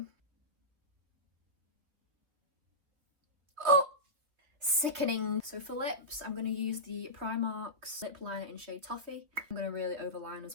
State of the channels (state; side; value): late; left; 3.0 ms